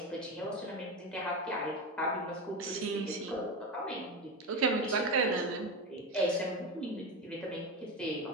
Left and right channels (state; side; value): normal; both; correlation 0.19